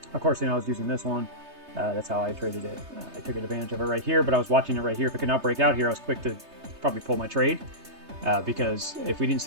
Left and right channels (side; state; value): left; late; 3.3 ms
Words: Of course, I was using this one. That's how I traded it. I took advantage of it right here, but I was watching it right here. If it could not break out here, I was quick to probably pull my trade because if we didn't